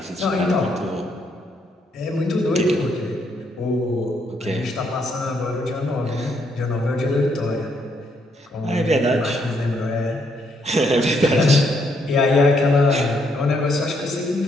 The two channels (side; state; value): both; normal; correlation 0.74